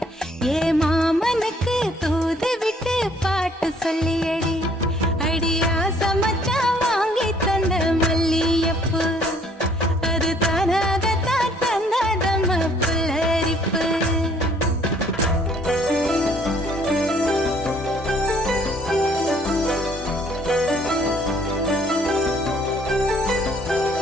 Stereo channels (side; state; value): both; normal; correlation 0.61